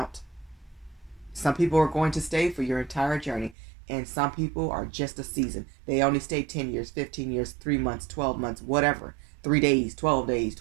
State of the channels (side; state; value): left; drops out; at 3.6 s